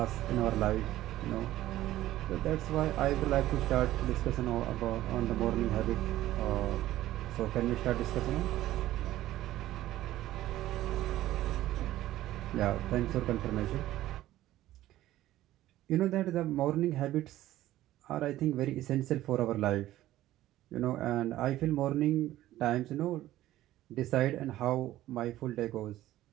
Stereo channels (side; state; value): left; quieter; 14.6 dB